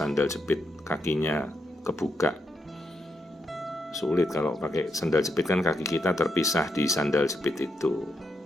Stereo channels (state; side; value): normal; both; correlation 0.82